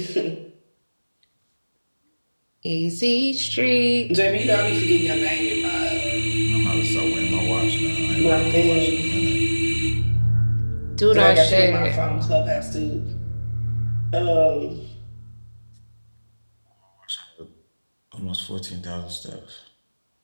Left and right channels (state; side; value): inverted; both; correlation -1.00